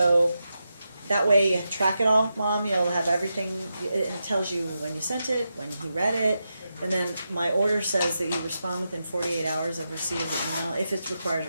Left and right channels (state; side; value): inverted; both; correlation -0.88